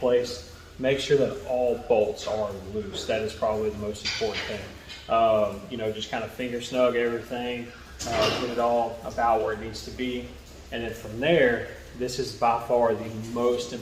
make sure that all bolts are loose. That is probably the most important thing. You know, just kind of finger snug everything, get it all about where it needs to be. And then from there, this is by far the most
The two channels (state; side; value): identical; both; correlation 1.00